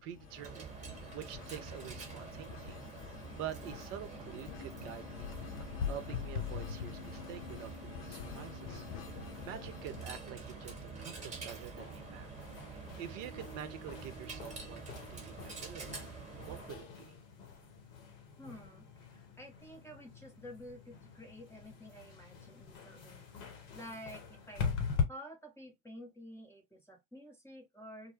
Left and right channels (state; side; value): normal; both; correlation -0.08